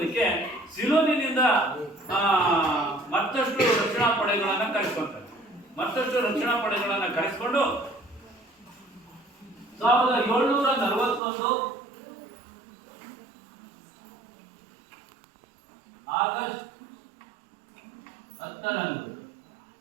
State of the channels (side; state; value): left; drops out; at 11.2 s